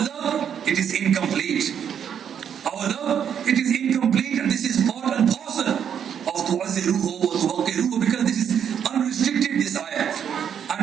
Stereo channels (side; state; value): left; quieter; 8.4 dB